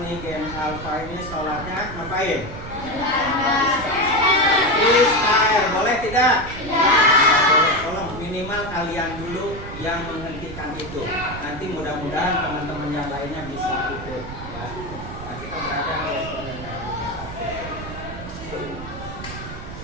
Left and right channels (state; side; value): noise; right; rumble, 11 dB below the sound